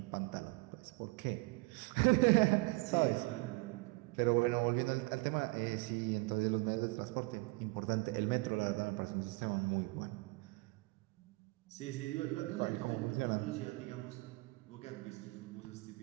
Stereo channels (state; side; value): quieter; left; 25.5 dB